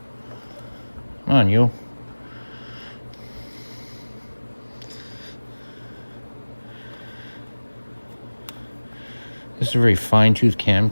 Come on, you. This is a very fine-tooth cam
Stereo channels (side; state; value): both; inverted; correlation -1.00